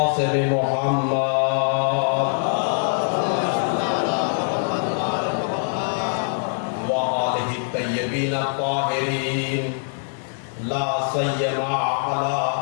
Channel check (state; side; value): silent; right; digital silence